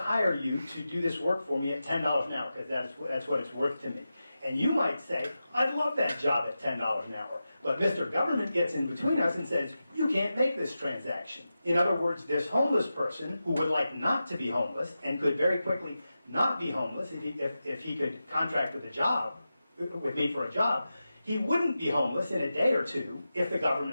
you to do this work for me at $10 an hour because that's what it's worth to me. And you might say, I'd love that job at $10 an hour. But Mr. Government gets in between us and says, you can't make this transaction. In other words, this homeless person who would like not to be homeless and could very quickly not be homeless if he could contract with me for a job, he wouldn't be homeless in a day or two if the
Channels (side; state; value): both; inverted; correlation -0.92